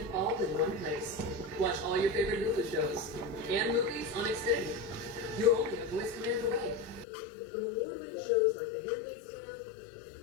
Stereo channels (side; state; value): right; drops out; at 7.1 s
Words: all in one place. Watch all your favorite Hulu shows and movies on Xfinity. You're only a voice command away. From award-winning shows like The Handmaid's Tale